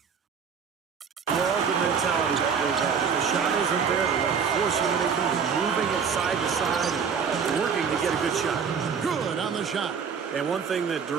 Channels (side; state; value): left; quieter; 6.5 dB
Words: Love the mentality that goes on. If the shot isn't there, they're forcing anything, moving it side to side, and working to get a good shot. Good on the shot. And one thing that